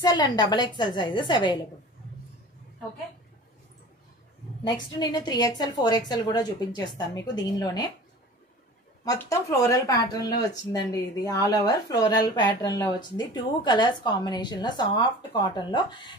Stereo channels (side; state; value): both; normal; correlation 0.40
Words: and XXL sizes available. Okay, next నేను 3XL 4XL కూడా చూపించేస్తాను మీకు. దీనిలోనే మొత్తం ఫ్లోరల్ ప్యాటర్న్ లో వచ్చిందండి. ఇది ఆల్ ఓవర్ ఫ్లోరల్ ప్యాటర్న్ లో వచ్చింది. 2 కలర్స్ కాంబినేషన్ లో సాఫ్ట్ కాటన్ లో